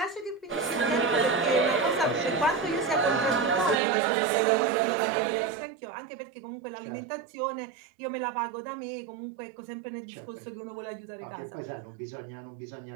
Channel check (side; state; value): left; drops out; at 3.8 s